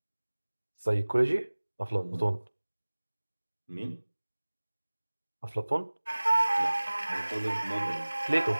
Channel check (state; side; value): inverted; both; correlation -1.00